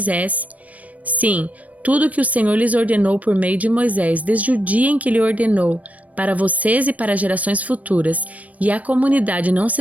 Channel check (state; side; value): late; left; 0.069 ms